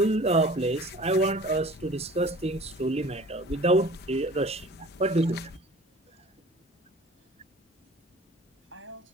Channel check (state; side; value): normal; both; correlation 0.45